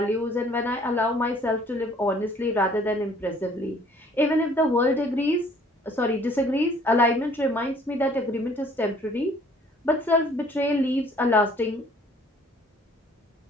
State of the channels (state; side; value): normal; both; correlation 0.57